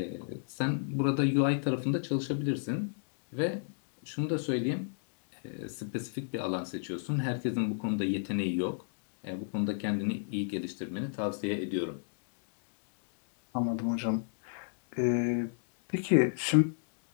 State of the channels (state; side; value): silent; right; digital silence